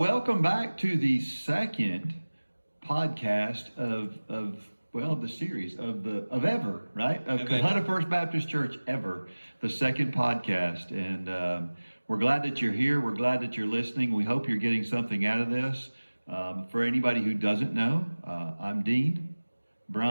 back to the second podcast of the series of ever, right? Of Of Kahuna ever. First Baptist Church ever, the second podcast, and we're glad that you're here. We're glad that you're listening. We hope you're getting something out of this. For anybody who doesn't know, I'm Dean,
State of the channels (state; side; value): inverted; both; correlation -1.00